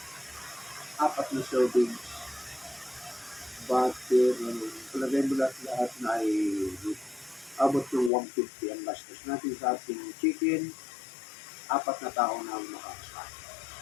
4 na servings. Butter. Palagay mo lahat na ay abot ng 150 ang gastos natin sa ating chicken. 4 na tao na ang makakasain.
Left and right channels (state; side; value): drops out; right; at 8.1 s